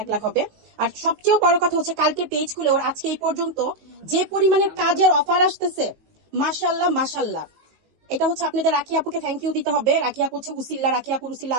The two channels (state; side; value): late; left; 19 ms